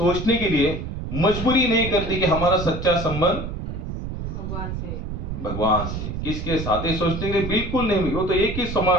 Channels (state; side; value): noise; right; rumble, 5 dB below the sound